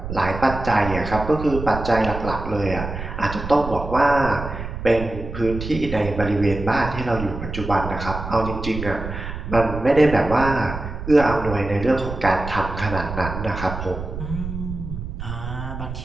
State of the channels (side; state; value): right; noise; rumble, 7 dB below the sound